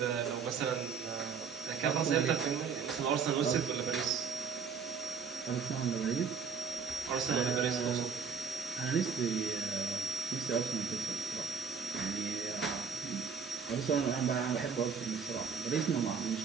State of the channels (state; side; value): quieter; left; 6.0 dB